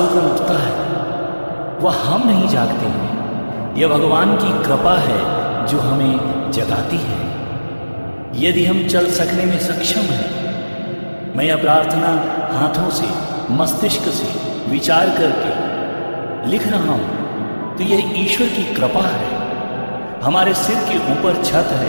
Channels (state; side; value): inverted; both; correlation -1.00